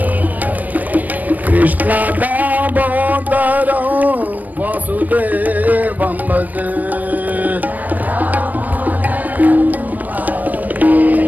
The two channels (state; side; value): late; left; 0.082 ms